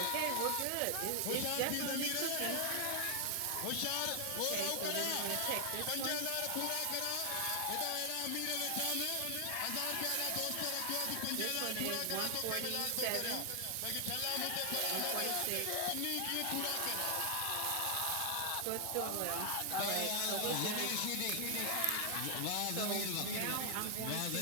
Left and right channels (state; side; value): different; both; correlation 0.00